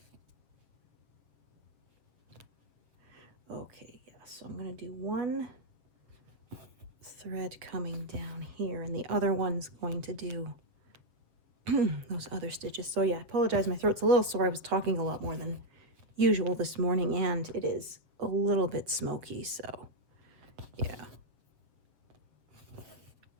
Okay, yeah, so I'm gonna do one thread coming down here, and the other one's going to do those other stitches. So yeah, I apologize, my throat's a little sore. I was talking a lot more than usual this morning, and it is a little bit smoky, so yeah.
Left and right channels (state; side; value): late; left; 7.4 ms